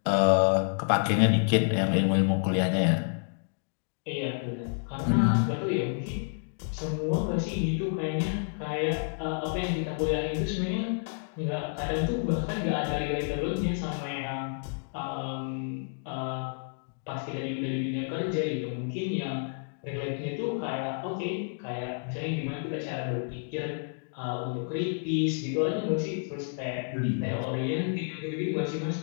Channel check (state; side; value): silent; right; digital silence